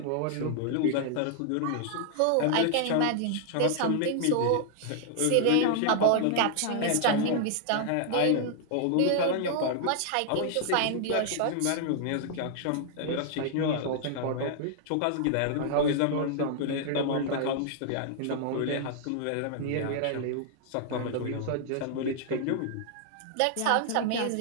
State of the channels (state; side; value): different; both; correlation -0.01